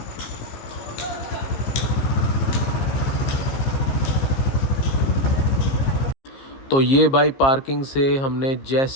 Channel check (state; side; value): late; right; 15 ms